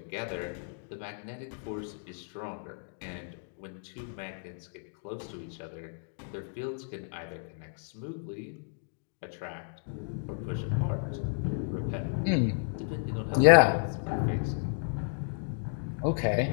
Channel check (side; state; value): right; silent; digital silence